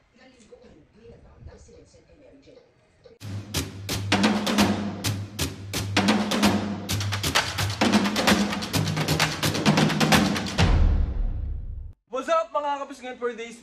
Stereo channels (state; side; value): identical; both; correlation 1.00